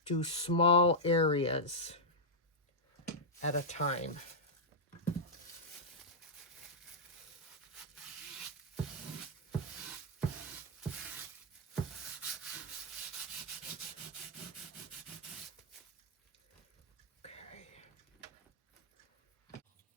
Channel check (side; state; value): both; normal; correlation -0.07